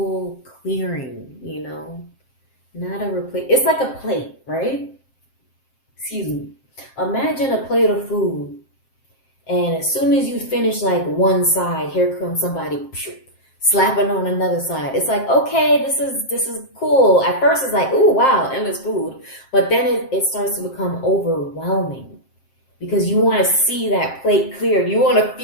clearing, you know? Not a replace. It's like a plate, right? Excuse me. Imagine a plate of food, and as soon as you finish like one side, here comes somebody slapping on another side. It's like, okay, this is cool. At first it's like, ooh, wow, endless food. But then it starts to become overwhelming because you want to see that plate cleared. You want to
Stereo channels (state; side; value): late; right; 7.6 ms